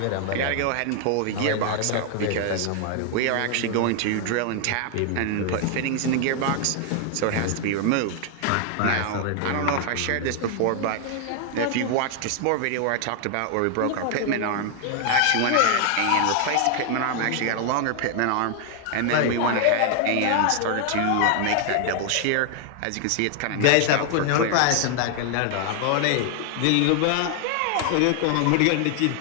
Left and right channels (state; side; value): different; both; correlation 0.00